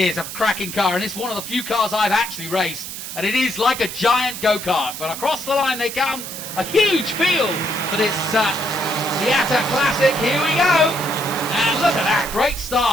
a cracking car. And it's one of the few cars I've actually raced. And it is like a giant go-kart. But across the line they come. A huge field for this Miata Classic. Here we go. And look at that. Great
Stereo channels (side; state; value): right; noise; hiss, 9 dB below the sound